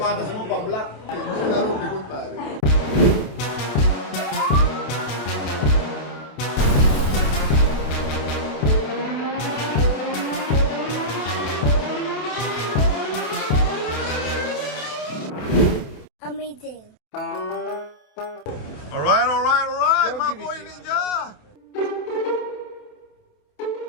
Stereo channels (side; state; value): right; late; 28 ms